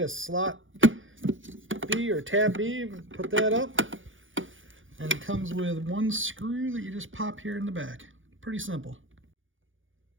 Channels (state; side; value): late; left; 0.57 ms